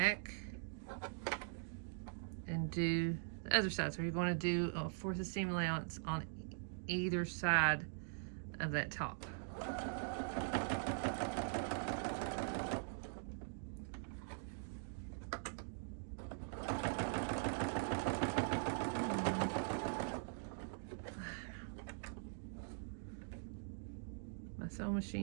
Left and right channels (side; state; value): left; silent; digital silence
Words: and do the other side. So you're going to do a 4th seam allowance on either side of that top. My sewing